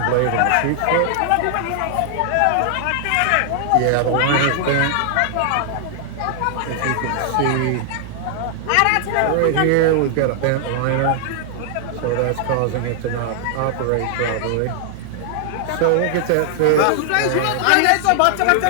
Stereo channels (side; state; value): both; different; correlation 0.00